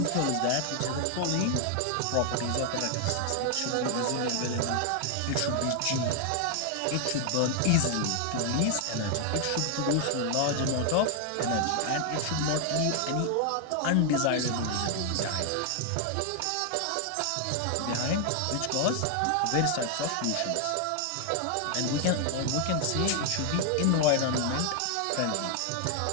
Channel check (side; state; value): both; different; correlation 0.00